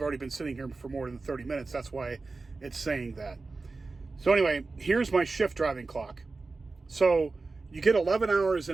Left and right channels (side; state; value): left; quieter; 3.8 dB